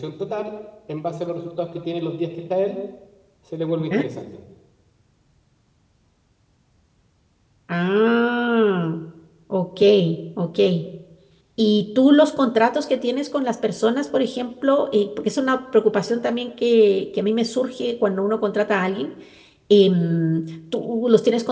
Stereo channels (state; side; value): identical; both; correlation 1.00